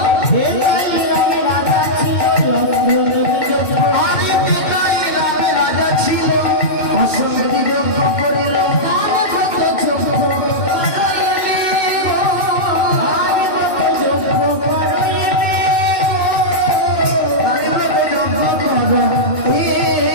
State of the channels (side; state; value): right; late; 2.6 ms